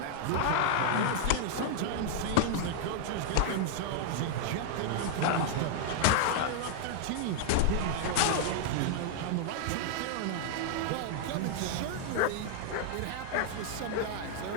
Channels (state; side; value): different; both; correlation -0.01